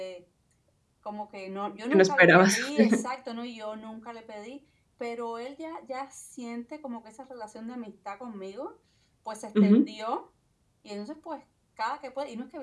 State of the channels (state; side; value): identical; both; correlation 1.00